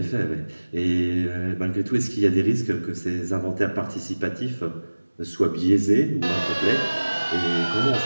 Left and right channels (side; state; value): both; inverted; correlation -1.00